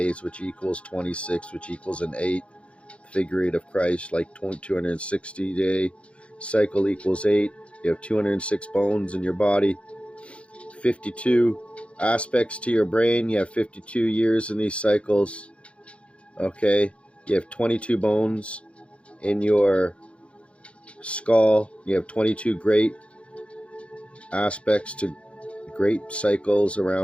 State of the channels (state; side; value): late; right; 0.060 ms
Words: which equals 26, which equals an 8. The figure 8 of Christ, like 260 day cycle equals 8. You have 206 bones in your body, 52 aspects to your brain. You have 52 years in these cycles. Okay, you have 22 bones in your skull. You have 22 great aspects to great cycles